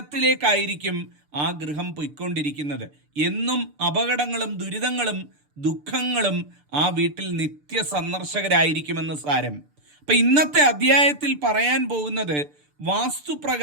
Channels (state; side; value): late; left; 6.8 ms